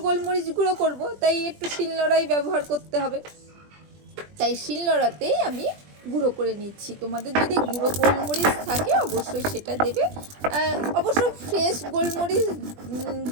গোলমরিচ গুঁড়ো করব, তাই একটু শিলনোড়াই ব্যবহার করতে হবে, তাই শিলনোড়াতেই আমি গুঁড়ো করে নিচ্ছি। তোমাদের যদি গুঁড়ো গোলমরিচ থাকে অবশ্যই সেটা দেবে। অবশ্য ফ্রেশ গোলমরিচ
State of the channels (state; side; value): late; left; 20 ms